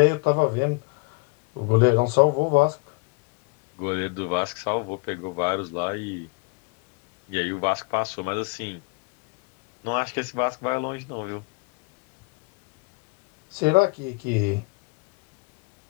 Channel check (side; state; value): right; quieter; 29.9 dB